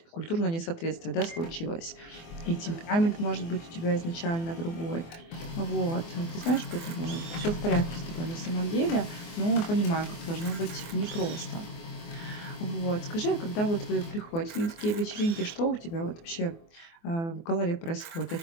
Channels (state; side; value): late; right; 24 ms